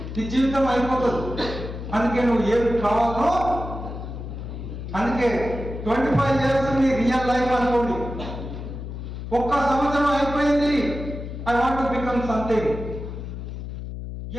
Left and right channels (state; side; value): noise; left; hum, 8 dB below the sound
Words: నీ జీవితం అయిపోతుంది. అందుకే నువ్వు ఏం కావాలో, అందుకే 25 ఇయర్స్ నీ రియల్ లైఫ్ అనుకోండి. 1 సంవత్సరం అయిపోయింది, I want to become something.